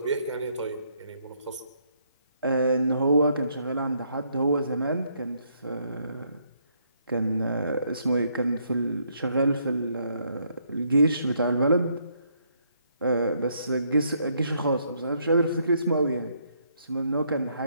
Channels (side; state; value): both; inverted; correlation -0.72